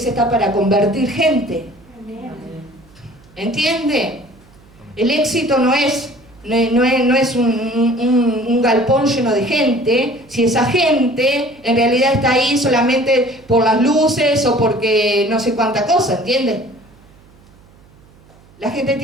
está para convertir gente. ¿Entiende? El éxito no es un galpón lleno de gente, si esa gente en realidad está ahí solamente por las luces o porque no sé cuánta cosa, ¿entiende? La gente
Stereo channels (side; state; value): right; noise; hum, 27 dB below the sound